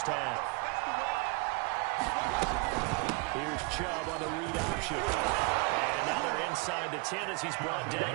half. Here's Chubb on the read option. And now they're inside the 10 as he's brought down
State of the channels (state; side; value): quieter; left; 27.5 dB